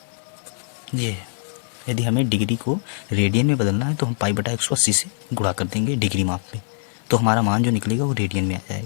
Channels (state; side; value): silent; right; 64 dB below the other